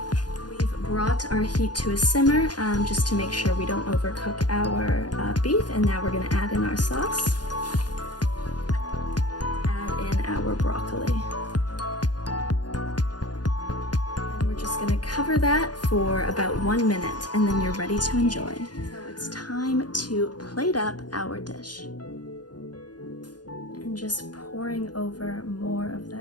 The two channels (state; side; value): late; right; 0.69 ms